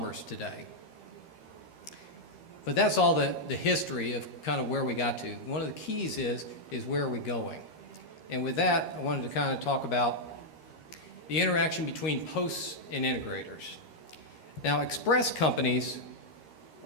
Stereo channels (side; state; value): right; late; 13 ms